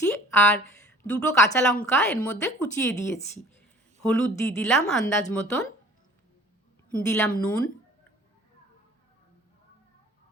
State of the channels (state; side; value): normal; both; correlation 0.49